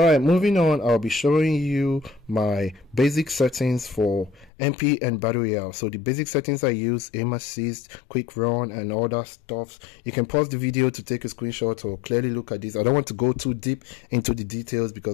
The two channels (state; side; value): drops out; right; at 4.5 s